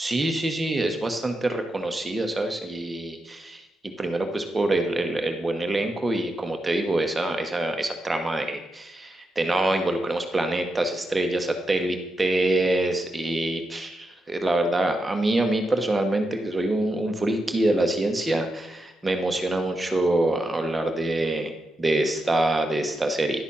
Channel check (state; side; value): normal; both; correlation 0.86